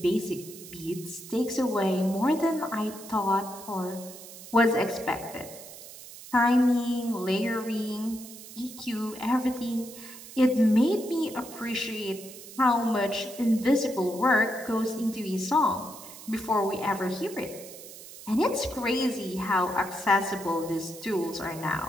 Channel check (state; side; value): noise; right; hiss, 15 dB below the sound